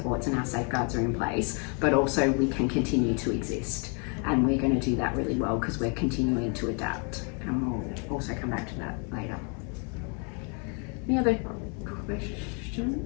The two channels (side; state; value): right; quieter; 37.4 dB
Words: and our safeguards are in place, but also we can continue to exist. And we're going to do that really well because we're continuing to adapt. And we'll also come back to that later. Any other